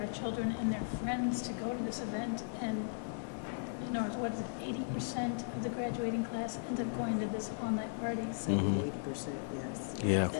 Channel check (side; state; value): right; silent; digital silence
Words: children and their friends to go to this event, and what is it, 80% of the graduating class ends up going to this all-night party. 70 to 80%, yes. Yeah.